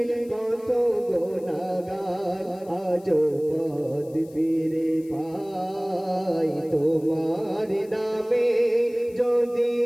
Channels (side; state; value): left; noise; hiss, 27 dB below the sound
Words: কত গুনাহগার আজো পথ ফিরে পাই। তোমার নামে যদি